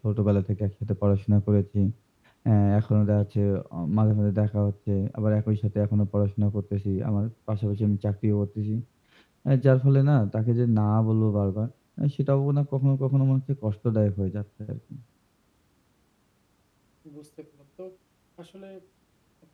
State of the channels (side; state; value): both; identical; correlation 1.00